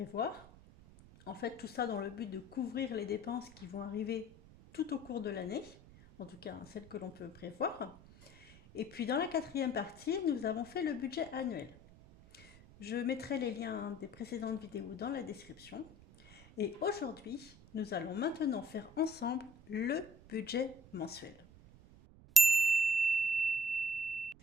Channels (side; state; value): right; noise; rumble, 21 dB below the sound